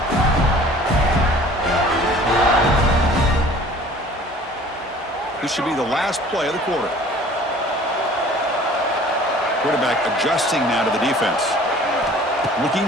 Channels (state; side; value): normal; both; correlation 0.49